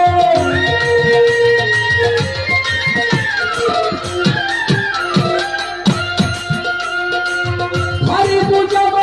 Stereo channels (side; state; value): left; noise; hum, 27 dB below the sound